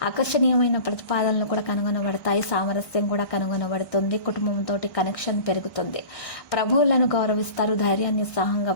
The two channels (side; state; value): right; late; 1.2 ms